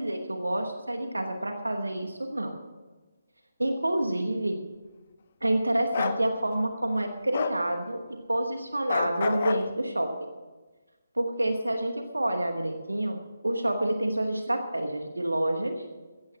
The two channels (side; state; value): both; inverted; correlation -0.93